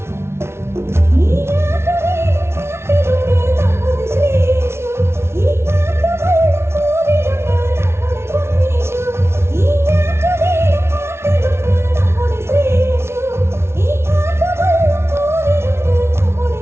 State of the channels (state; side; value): late; left; 0.12 ms